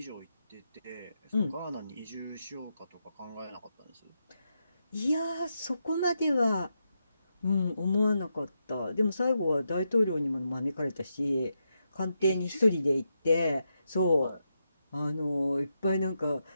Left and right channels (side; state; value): both; inverted; correlation -0.85